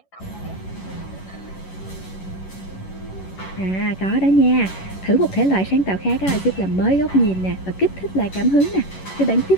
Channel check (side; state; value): right; late; 11 ms